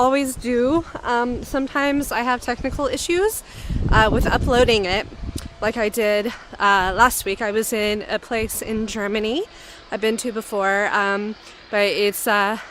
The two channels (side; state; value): both; identical; correlation 1.00